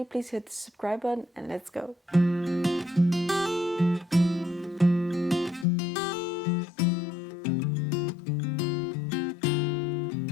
please hit the subscribe button and let's go.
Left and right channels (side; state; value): right; drops out; at 5.7 s